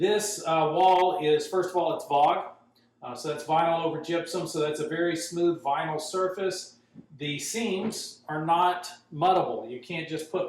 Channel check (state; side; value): identical; both; correlation 1.00